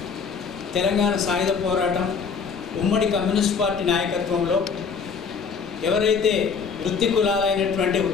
తెలంగాణ సాయుధ పోరాటం ఉమ్మడి కమ్యూనిస్ట్ పార్టీ నాయకత్వంలో ఎవరైతే వృత్తి కులాలైనటువంటి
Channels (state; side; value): quieter; right; 5.8 dB